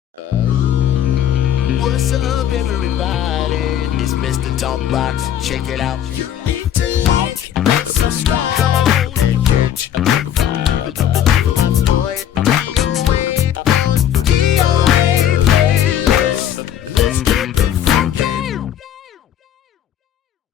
What's up, everybody? It's Mr. Talkbox. Check it out. You need to like and subscribe. Come on and catch a modified. DOA playlist. Let's get the funky.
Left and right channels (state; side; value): quieter; right; 10.4 dB